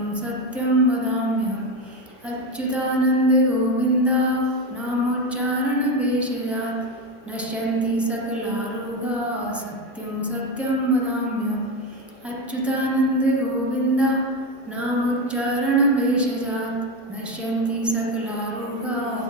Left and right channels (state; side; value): normal; both; correlation 0.15